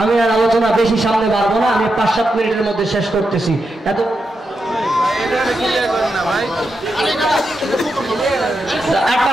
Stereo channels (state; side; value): normal; both; correlation 0.86